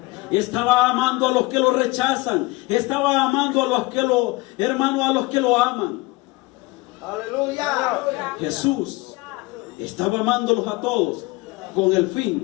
Estaba amando a los que lo rechazan, estaba amando a los que a los que lo aman. Aleluya. Jesús estaba amándolos a todos con el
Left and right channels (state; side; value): quieter; right; 22.7 dB